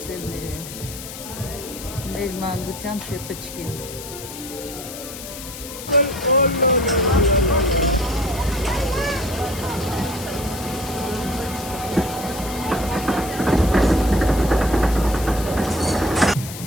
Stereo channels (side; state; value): left; noise; hiss, 11 dB below the sound